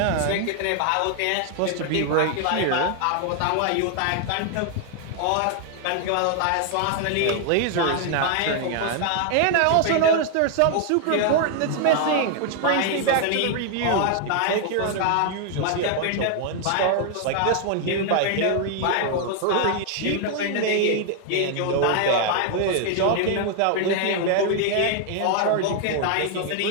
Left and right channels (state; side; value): different; both; correlation 0.00